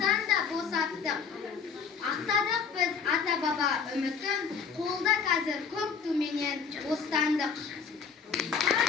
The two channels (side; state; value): right; quieter; 6.0 dB